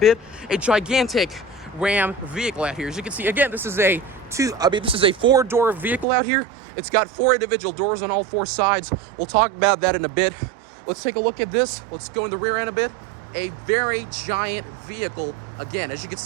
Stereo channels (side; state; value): left; drops out; at 6.1 s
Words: A gigantic Ram vehicle out here. As you can see, again, this is a 4-door vehicle out here. It's got 4 individual doors on all 4 sides. We'll talk about that in a bit. Let's take a look at this. Let's go in the rear end a bit. A very giant vehicle. Again, as you can